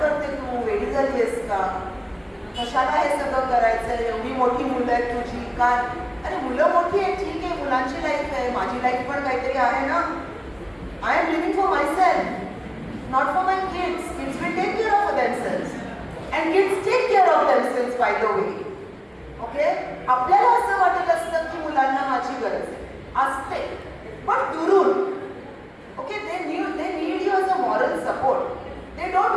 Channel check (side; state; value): both; identical; correlation 1.00